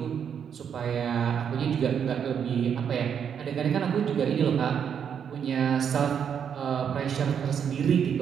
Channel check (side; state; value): left; quieter; 7.9 dB